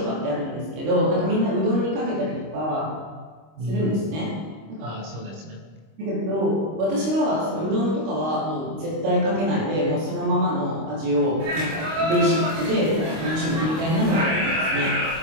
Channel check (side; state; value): left; late; 26 ms